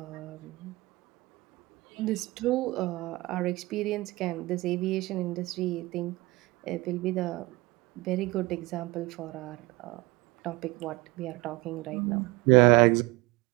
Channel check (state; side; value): quieter; left; 21.9 dB